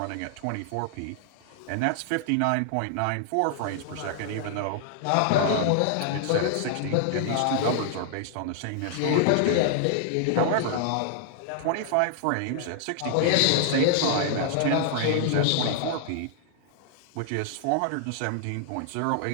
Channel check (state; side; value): different; both; correlation -0.01